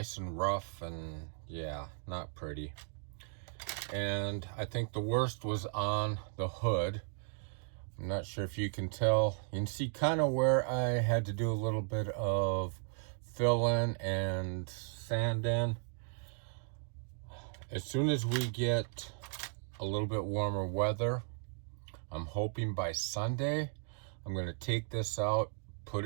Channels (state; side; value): silent; left; 54 dB below the other